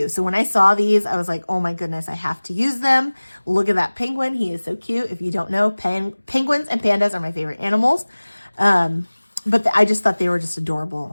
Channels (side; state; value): both; inverted; correlation -1.00